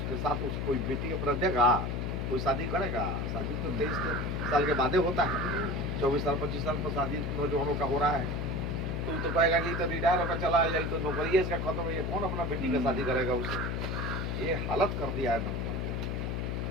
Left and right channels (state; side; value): noise; left; hum, 1 dB below the sound